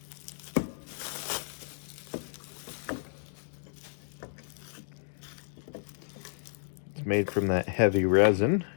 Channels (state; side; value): silent; right; digital silence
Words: It's made from that heavy resin.